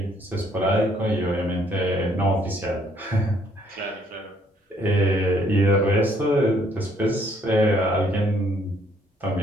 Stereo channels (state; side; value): normal; both; correlation 0.66